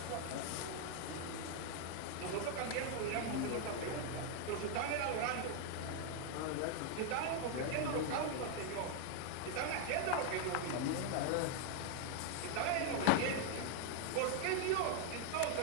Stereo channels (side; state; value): both; different; correlation 0.00